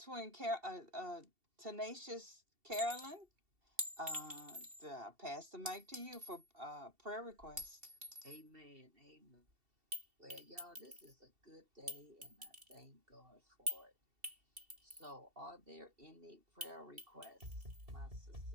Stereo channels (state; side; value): late; left; 2.7 ms